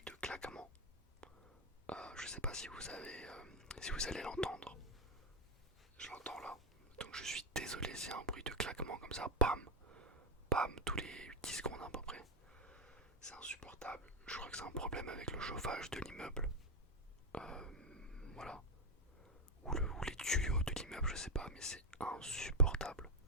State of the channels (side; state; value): both; normal; correlation 0.05